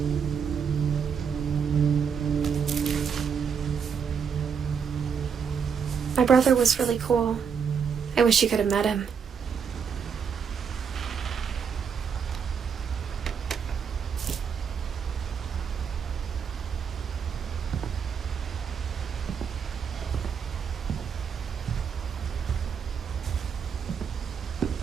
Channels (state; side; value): quieter; left; 6.8 dB